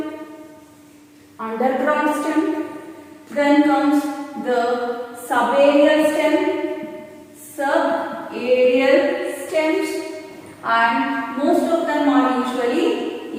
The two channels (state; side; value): identical; both; correlation 1.00